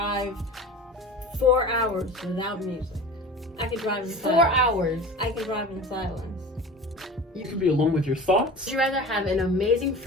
4 hours without music. I can drive in silence. 4 hours. I can drive in silence. You can be alone with your thoughts. Would you rather have an amazing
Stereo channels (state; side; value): normal; both; correlation 0.36